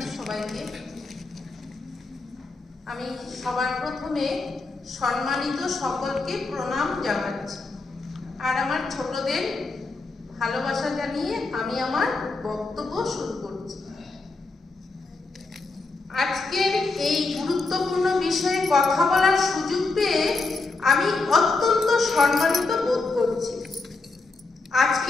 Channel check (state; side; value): quieter; right; 3.6 dB